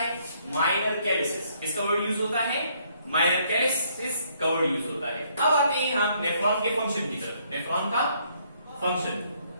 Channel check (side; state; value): both; inverted; correlation -0.68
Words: माइनर कैलिसिस। किसका वर्ड यूज होता है? माइनर कैलिसिस का वर्ड यूज होता है। अब आते हैं हम नेफ्रॉन के फंक्शन की तरफ। नेफ्रॉन का फंक्शन